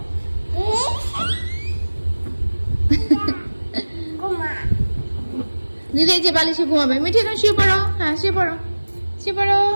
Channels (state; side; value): inverted; both; correlation -1.00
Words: দিদি এই যে বালিশে ঘুমাবে। মিঠি এখন শুয়ে পড়ো। হ্যাঁ শুয়ে পড়ো, শুয়ে পড়ো,